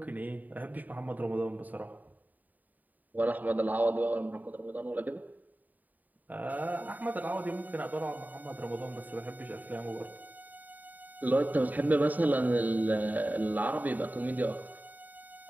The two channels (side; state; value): left; late; 0.083 ms